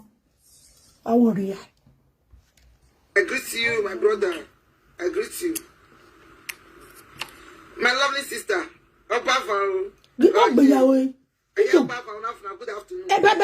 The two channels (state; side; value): identical; both; correlation 1.00